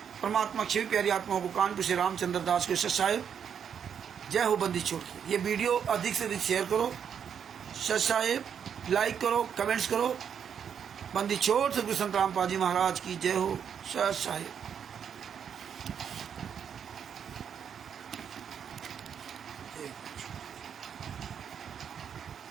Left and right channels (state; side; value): quieter; left; 7.8 dB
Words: परमात्मा सभी प्यारी आत्माओं को कानपुर से रामचंद्र दास के सच साहेब जय हो। बंदी छोड़ के ये वीडियो अधिक से अधिक शेयर करो, सच साहेब लाइक करो, कमेंट्स करो। बंदी छोड़ सतगुरु संत रामपाल जी महाराज की जय हो। सच साहेब।